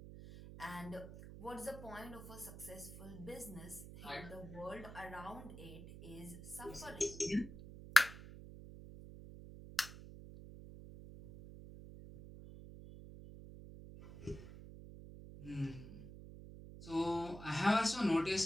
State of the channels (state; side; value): noise; right; hum, 13 dB below the sound